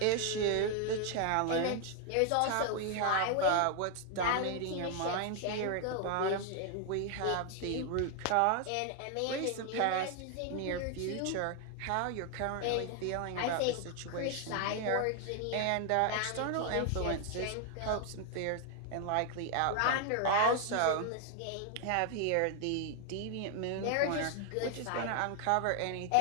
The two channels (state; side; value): different; both; correlation 0.00